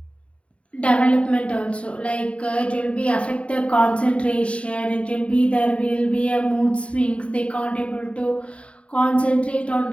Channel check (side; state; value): right; late; 0.062 ms